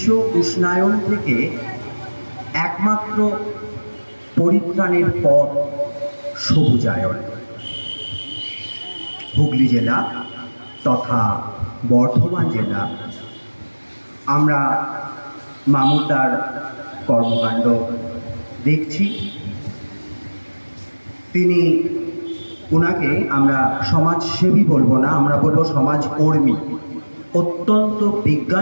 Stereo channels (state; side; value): inverted; both; correlation -1.00